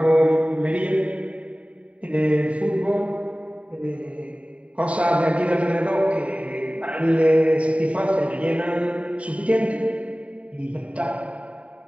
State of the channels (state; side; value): late; left; 0.065 ms